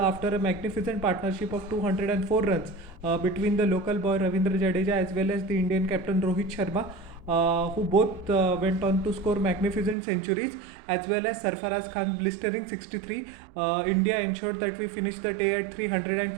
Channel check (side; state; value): left; drops out; at 10.0 s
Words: a magnificent partnership of 204 runs between the local boy Ravindra Jadeja as well as the Indian captain Rohit Sharma, who both went on to score magnificent centuries, as well as Sarfaraz Khan blistering 63. India ensured that we finished the day at